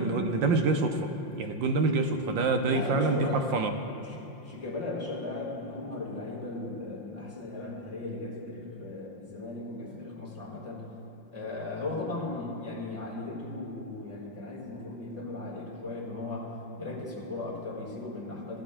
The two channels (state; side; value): late; left; 5.7 ms